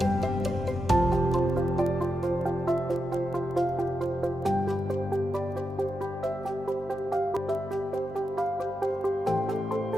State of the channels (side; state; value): both; normal; correlation 0.87